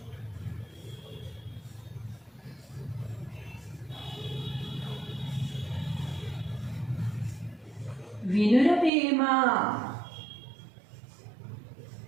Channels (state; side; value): drops out; left; at 8.9 s